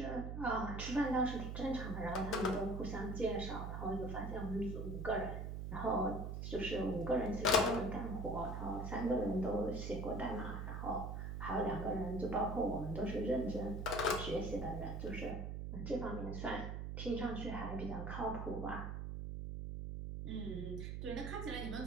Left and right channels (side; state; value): right; noise; hum, 4 dB below the sound